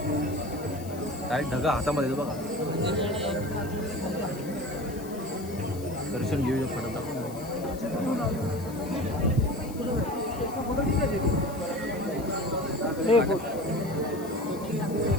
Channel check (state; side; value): noise; left; hiss, 18 dB below the sound